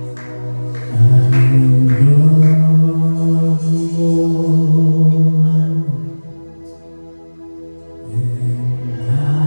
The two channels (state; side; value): inverted; both; correlation -1.00